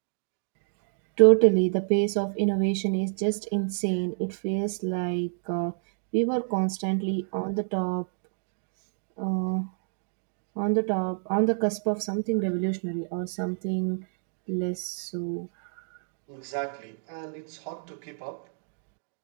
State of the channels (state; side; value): silent; left; digital silence